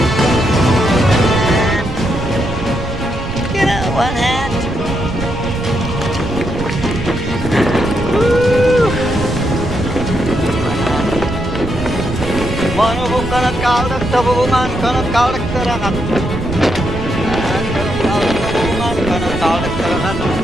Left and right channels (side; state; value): right; noise; rumble, 7 dB below the sound